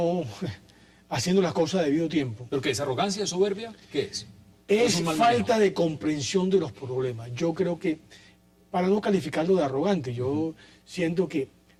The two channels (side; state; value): both; identical; correlation 1.00